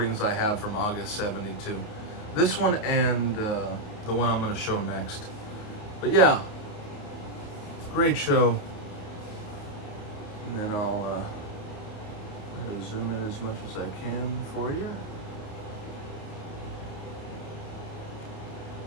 I have from August 72. This one and the one I'm going to show next. But yeah, great show. And then I'll zoom in as much as I can for you.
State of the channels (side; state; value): right; late; 28 ms